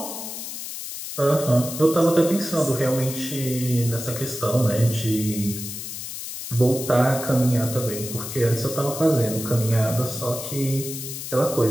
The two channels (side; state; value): left; noise; hiss, 8 dB below the sound